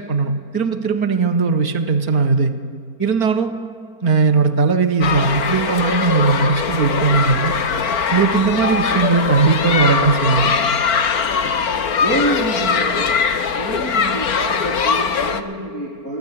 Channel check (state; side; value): late; right; 4.4 ms